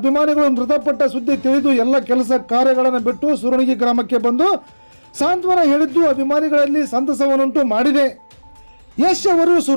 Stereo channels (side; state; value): both; inverted; correlation -1.00